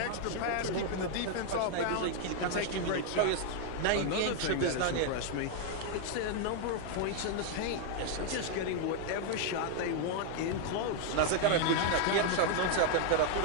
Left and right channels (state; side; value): different; both; correlation 0.00